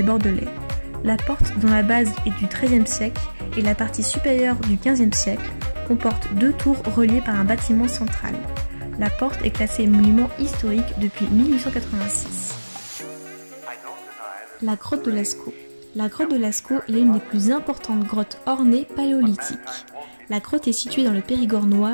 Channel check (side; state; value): both; inverted; correlation -1.00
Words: Bordelais. La porte, dont la base est du XIIIe siècle et la partie supérieure du XVe siècle, comporte 2 tours reliées par un bâtiment central. La porte est classée monument historique depuis 1886. La grotte de Lascaux. La grotte de Lascaux est l'une des plus importantes grottes ornées paléolithiques. La grotte est située dans le Périgord